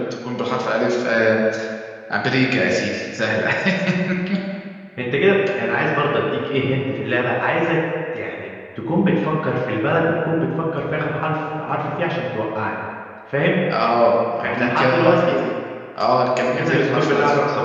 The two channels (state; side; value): identical; both; correlation 1.00